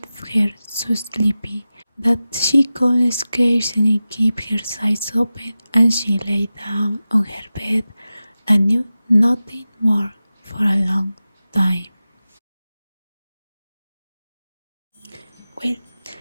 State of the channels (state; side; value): inverted; both; correlation -0.95